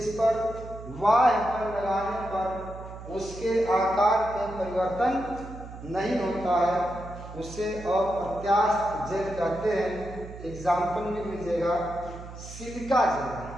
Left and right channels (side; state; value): right; noise; hum, 13 dB below the sound